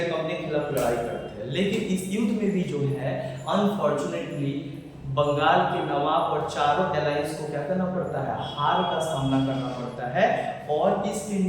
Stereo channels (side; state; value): both; identical; correlation 1.00